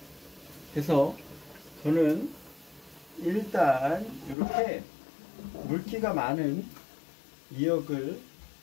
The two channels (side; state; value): right; drops out; at 4.4 s